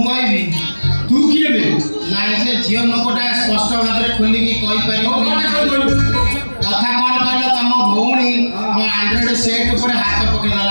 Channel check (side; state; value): both; inverted; correlation -1.00